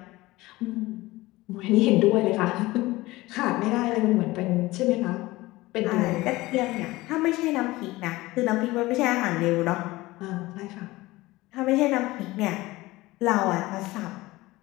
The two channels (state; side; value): quieter; right; 19.5 dB